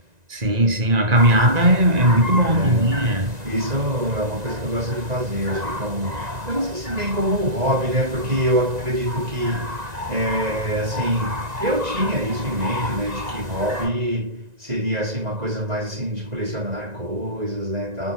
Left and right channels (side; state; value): left; late; 1.9 ms